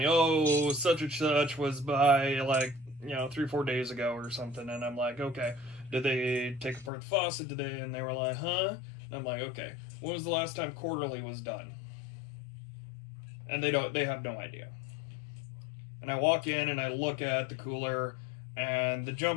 oh, such and such was by 3-4 days ago or something, and I'm like, okay, did they take apart the faucet? And they were like, huh? And I'm like, okay, when was the last time quarterly was done? And they have no idea. And I walk in and I look at the cooler, and the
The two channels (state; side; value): drops out; right; at 6.9 s